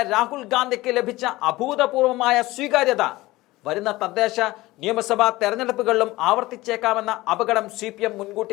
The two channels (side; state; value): right; quieter; 19.0 dB